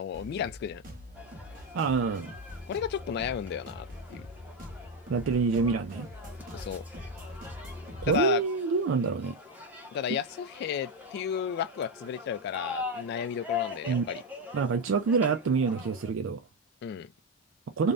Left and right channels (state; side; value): normal; both; correlation 0.09